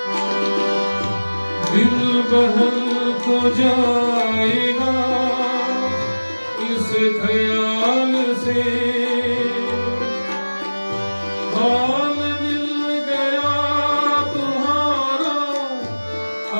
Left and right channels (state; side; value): inverted; both; correlation -1.00